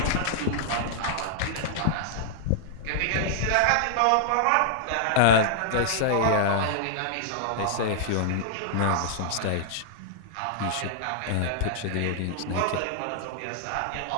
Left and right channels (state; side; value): different; both; correlation -0.01